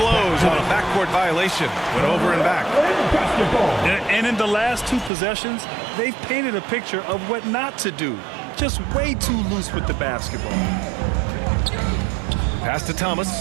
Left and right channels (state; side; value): drops out; left; at 5.1 s